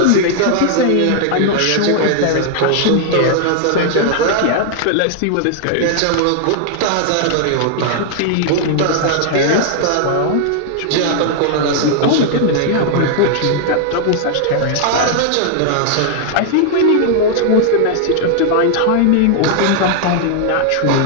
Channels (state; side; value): different; both; correlation 0.00